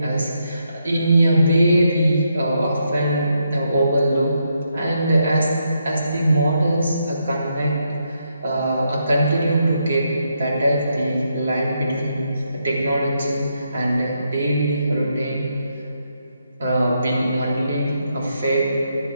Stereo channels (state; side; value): inverted; both; correlation -0.79